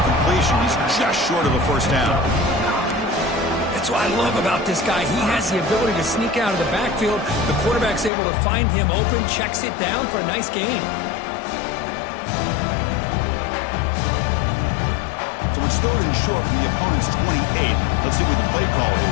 completion. He's just short of a first down. That's what I love about this guy. He has the ability to sneak out of the backfield. The quarterback's able to find him open, checks it down for a nice gain. So it's third and short from the opponent's 28. Let's see what the play call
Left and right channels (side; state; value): right; drops out; at 8.1 s